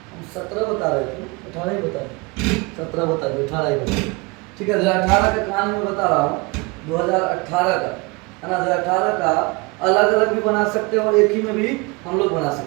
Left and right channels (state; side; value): quieter; left; 26.7 dB